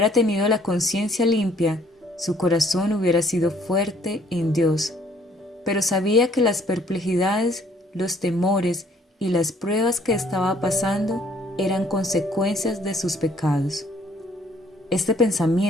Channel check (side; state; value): both; normal; correlation 0.62